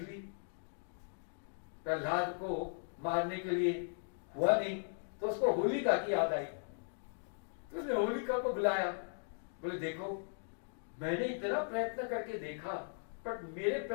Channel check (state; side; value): silent; right; digital silence